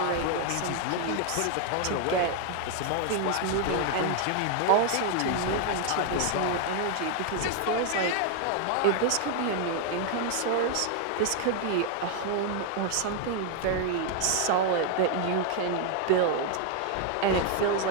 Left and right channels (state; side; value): different; both; correlation 0.00